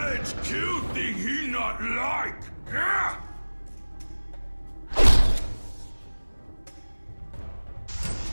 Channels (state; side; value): inverted; both; correlation -1.00